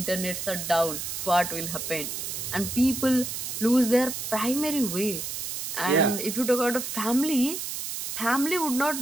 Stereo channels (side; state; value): right; noise; hiss, 5 dB below the sound